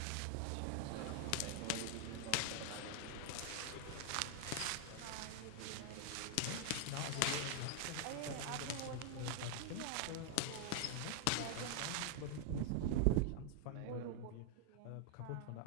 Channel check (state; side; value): different; both; correlation 0.00